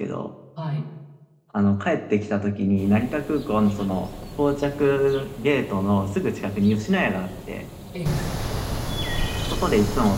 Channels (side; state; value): both; identical; correlation 1.00